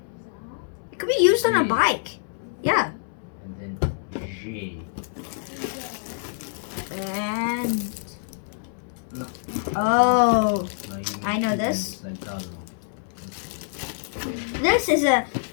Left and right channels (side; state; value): right; silent; 61 dB below the other